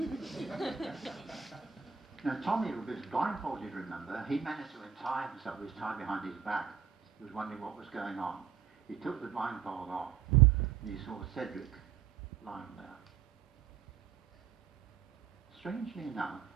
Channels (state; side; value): quieter; left; 7.7 dB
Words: Now Tommy was blindfolded, remember. He managed to untie himself. He was tied behind his back. He was wondering what was going on. He took the blindfold off, and he saw Cedric lying there. Strangely enough,